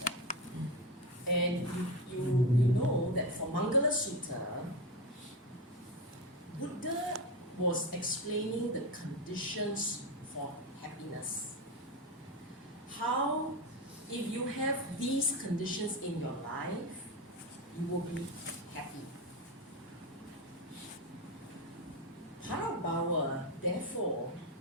And you know that for Mangala Sutta, Buddha was explaining the conditions for happiness. How, if you have these conditions in your life, you will be happy. Parābhava, therefore,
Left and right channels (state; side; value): normal; both; correlation 0.17